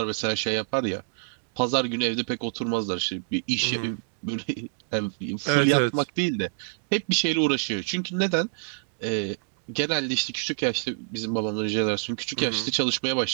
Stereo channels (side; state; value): left; silent; digital silence